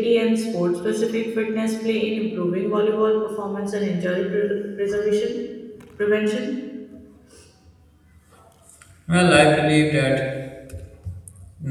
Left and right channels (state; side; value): identical; both; correlation 1.00